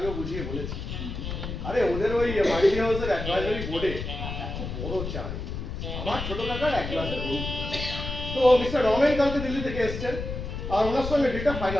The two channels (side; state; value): left; noise; rumble, 6 dB below the sound